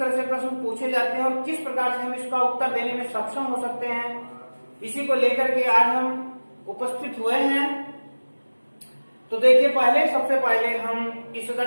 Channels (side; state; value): both; inverted; correlation -1.00